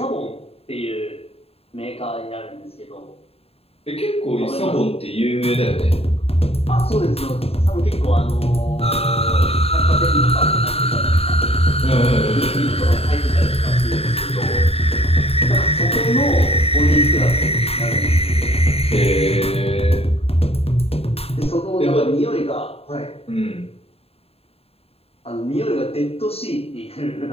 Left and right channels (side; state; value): right; late; 0.29 ms